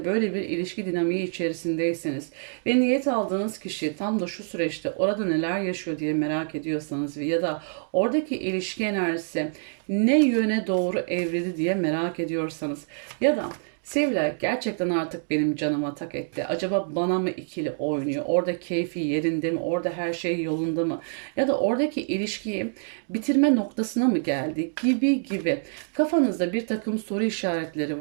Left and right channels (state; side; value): silent; left; digital silence